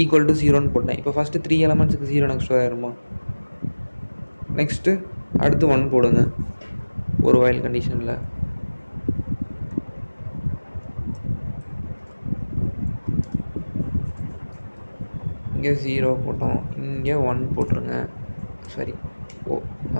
equal to 0ன்னு போட்டேன். இப்போ ஃபஸ்ட்டு 3 எலமெண்ட்ஸுக்கு 0 நெக்ஸ்ட் ஆயிருமா? நெக்ஸ்ட்டு அடுத்து 1 போடுங்க ஒரு வைல் கண்டிஷனில். இங்கே 0 போட்டோம், இங்கே 1 போட்டுருங்க. சரி,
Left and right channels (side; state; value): both; inverted; correlation -1.00